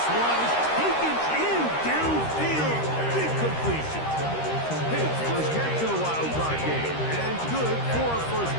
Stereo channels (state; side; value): late; right; 13 ms